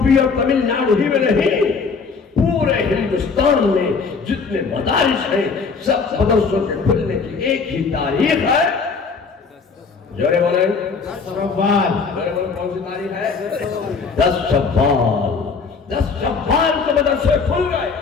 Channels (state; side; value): quieter; right; 5.0 dB